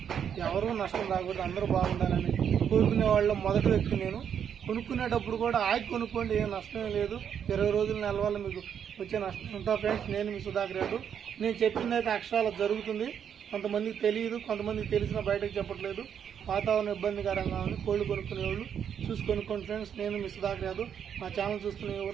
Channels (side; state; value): left; quieter; 8.3 dB